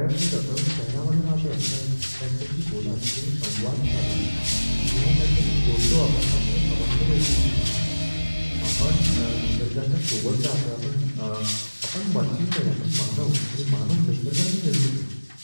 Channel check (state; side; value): inverted; both; correlation -1.00